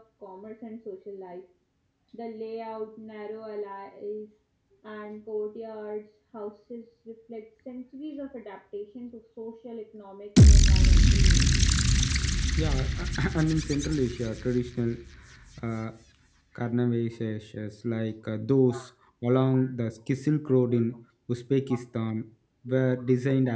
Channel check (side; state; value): both; identical; correlation 1.00